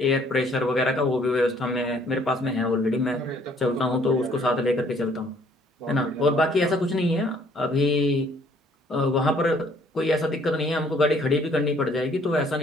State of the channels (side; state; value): both; normal; correlation 0.62